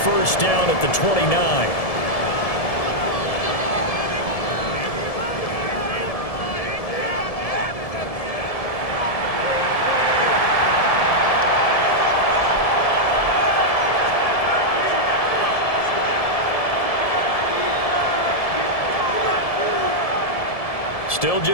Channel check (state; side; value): late; right; 1.7 ms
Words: first down at the 29. Still